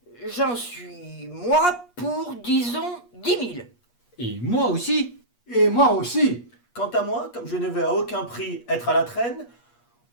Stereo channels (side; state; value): right; late; 8.4 ms